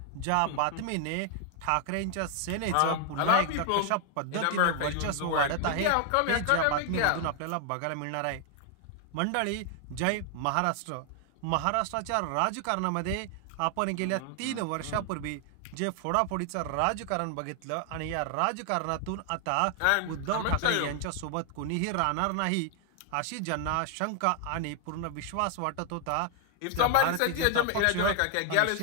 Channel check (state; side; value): different; both; correlation 0.00